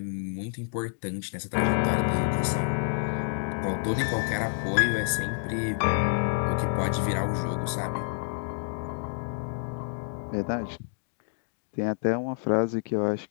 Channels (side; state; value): right; silent; digital silence